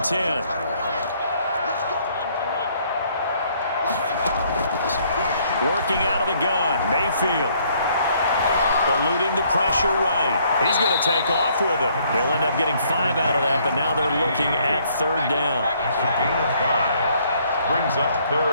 10. Working out of the gun, Mayfield. Eluding the pressure right. He's going to take off with it. He'll end up getting 5 out of that, but now they're looking at 3rd down. Brings up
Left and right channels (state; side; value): inverted; both; correlation -0.65